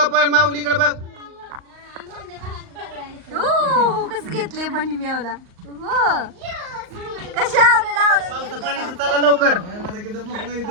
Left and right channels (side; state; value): left; late; 38 ms